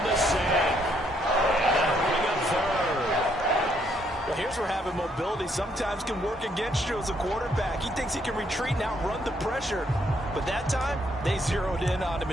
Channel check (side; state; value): both; normal; correlation 0.71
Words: the sack. And that'll bring up third. Well, here's where having mobility sometimes can work against you as a quarterback. He thinks he can retreat and outrun the pressure. But that time, they zeroed in on him